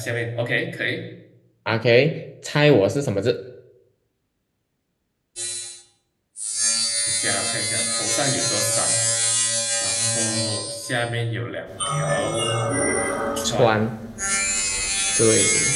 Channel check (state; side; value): identical; both; correlation 1.00